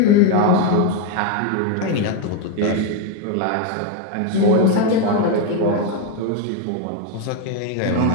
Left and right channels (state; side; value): different; both; correlation 0.02